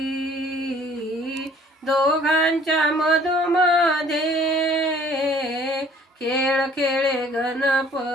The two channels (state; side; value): normal; both; correlation 0.55